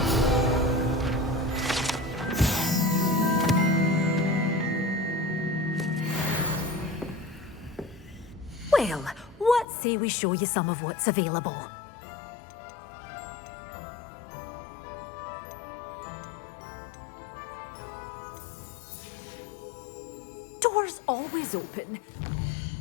Well, what say we show you some of what's available? Doors always open.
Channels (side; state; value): right; drops out; at 9.7 s